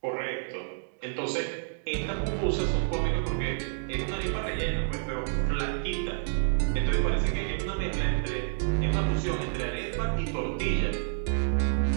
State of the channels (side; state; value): left; silent; digital silence